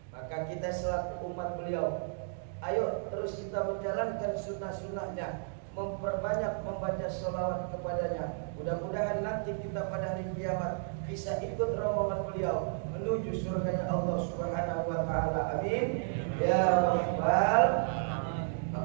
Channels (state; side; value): silent; left; digital silence